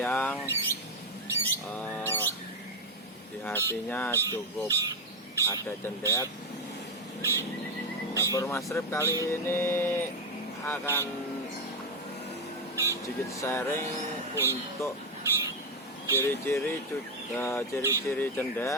di hatinya cukup ada cendet. Dapur Mas Rip kali ini akan sedikit sharing untuk ciri-ciri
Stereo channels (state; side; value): normal; both; correlation 0.07